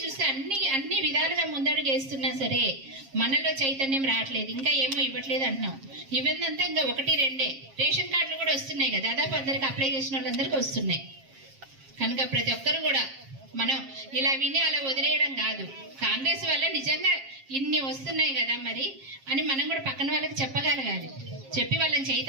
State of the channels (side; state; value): left; late; 7.5 ms